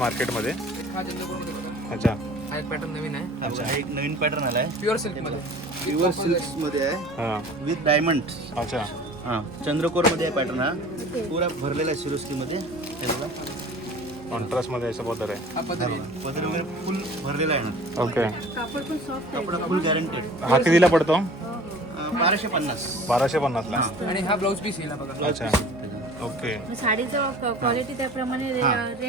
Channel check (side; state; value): both; normal; correlation 0.44